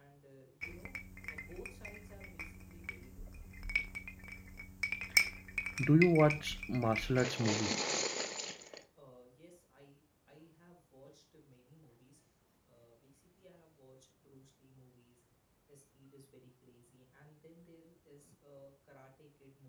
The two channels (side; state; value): both; identical; correlation 1.00